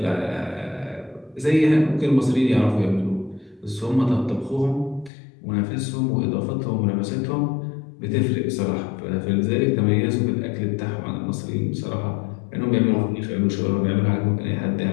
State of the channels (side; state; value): right; drops out; at 5.1 s